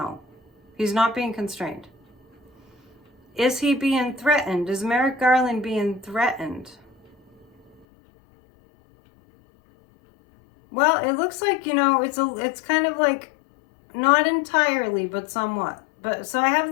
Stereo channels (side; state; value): right; drops out; at 7.9 s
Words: He's not being constrained. Is he being threatened? Is Merrick Garland being threatened? Well, it looks like, it's kind of like, not entirely, but somewhat. But so I have